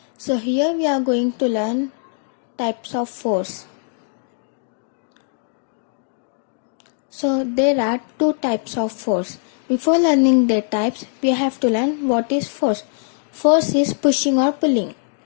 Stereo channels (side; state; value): right; silent; 63 dB below the other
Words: So here we are going to learn types of force. So there are two types of force. Before learning their types, we have to learn what is force. Force is pushing or pulling.